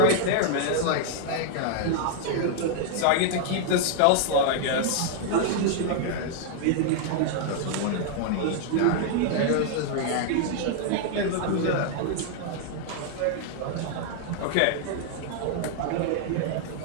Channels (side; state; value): both; different; correlation -0.01